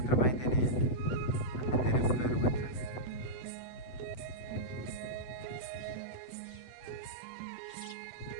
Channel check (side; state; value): right; late; 8.0 ms